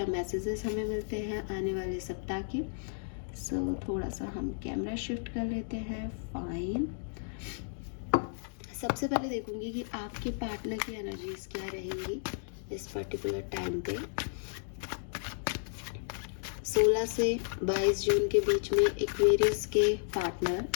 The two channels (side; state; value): right; silent; digital silence